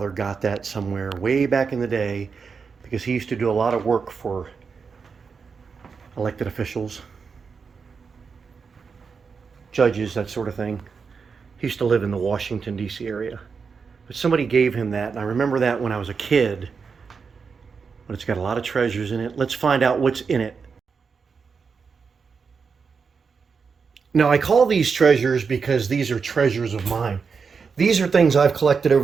got that somewhere way back in the day because he used to do a lot of work for elected officials, judges, that sort of thing. He used to live in the Washington, D.C. area. But somebody gave him that, and I remember that when I was a kid. But it's got a lot of treasures in it. Let's find out what's in it. Now, I call these treasures because these are treasures of mine. These are things I've collected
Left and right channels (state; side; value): quieter; left; 5.5 dB